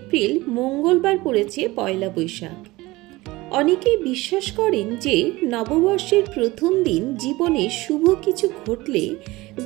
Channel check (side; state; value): left; quieter; 20.3 dB